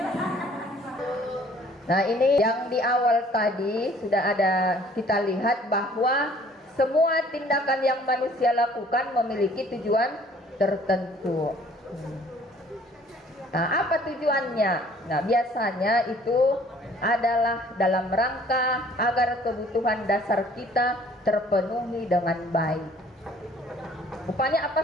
Nah, ini yang di awal tadi sudah ada kita lihat bahwa semua tindakan yang manusia lakukan memiliki tujuan tertentu. Nah, apa tujuannya? Nah, biasanya itu adalah dalam rangka agar kebutuhan dasar kita terpenuhi dengan baik. Rupanya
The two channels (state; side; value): normal; both; correlation 0.55